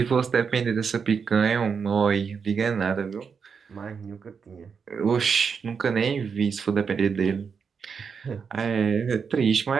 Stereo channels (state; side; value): quieter; left; 6.1 dB